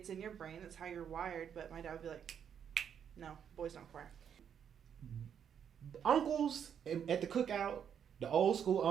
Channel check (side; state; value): left; quieter; 8.2 dB